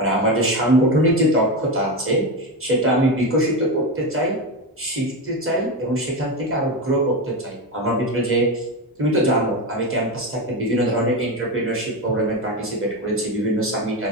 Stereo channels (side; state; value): both; normal; correlation 0.16